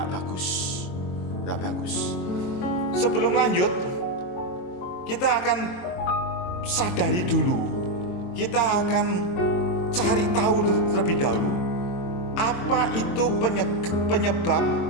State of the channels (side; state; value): right; late; 22 ms